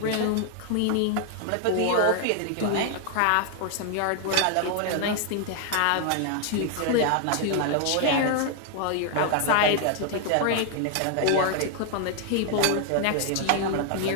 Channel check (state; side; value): different; both; correlation 0.00